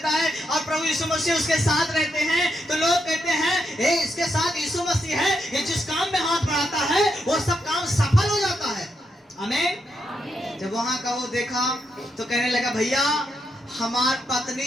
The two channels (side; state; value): both; normal; correlation 0.81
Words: है, और प्रभु यीशु मसीह उसके साथ रहते हैं, तो लोग कहते हैं इसके साथ यीशु मसीह है, ये जिस काम में हाथ बढ़ाता है वो सब काम सफल हो जाता है। आमीन। जब वहां का वो देखा तो कहने लगा, भैया हमार